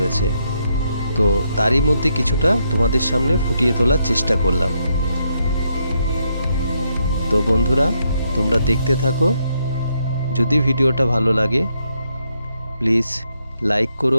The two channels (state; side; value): inverted; both; correlation -0.78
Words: তো তারই মধ্যে কিছুটা তোমাদের সামনে ফুটিয়ে তোলার চেষ্টা করলাম। তো বন্ধুরা, তোমরা দেখতে থাকো। যদি ভিডিওটা ভালো লাগে প্লিজ লাইক